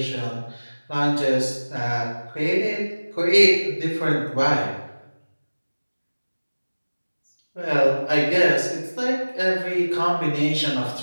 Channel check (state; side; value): inverted; both; correlation -1.00